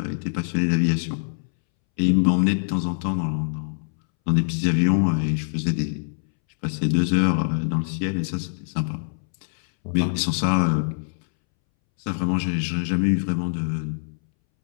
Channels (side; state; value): right; silent; 63 dB below the other